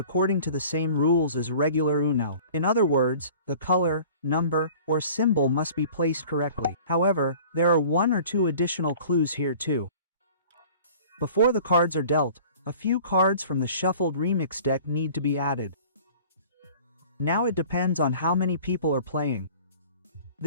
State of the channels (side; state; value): both; inverted; correlation -0.46